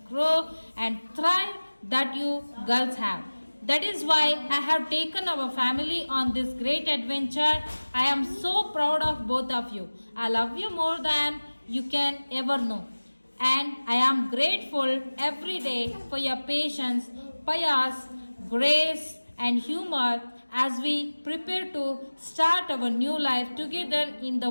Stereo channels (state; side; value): inverted; both; correlation -1.00